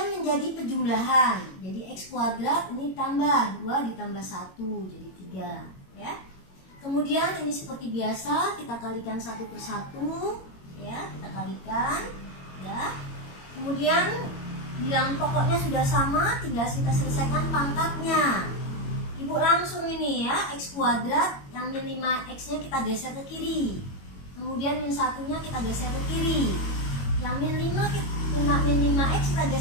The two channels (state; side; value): late; right; 22 ms